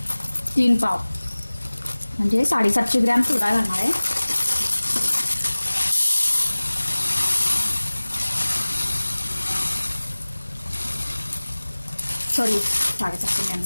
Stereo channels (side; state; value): both; inverted; correlation -1.00